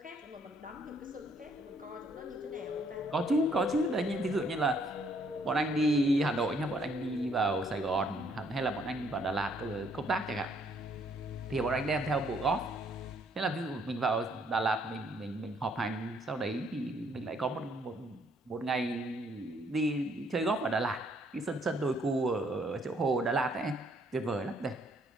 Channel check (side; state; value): both; normal; correlation 0.67